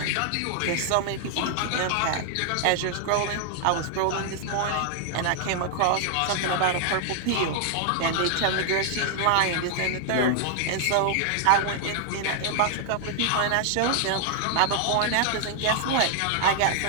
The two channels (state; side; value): different; both; correlation 0.00